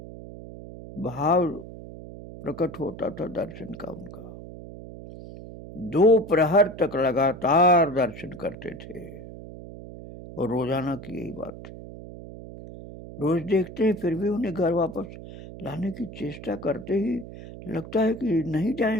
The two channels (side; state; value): right; noise; hum, 13 dB below the sound